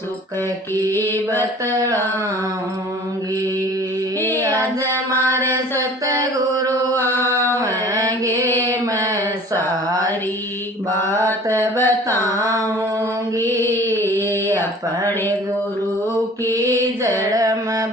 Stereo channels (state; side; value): normal; both; correlation 0.47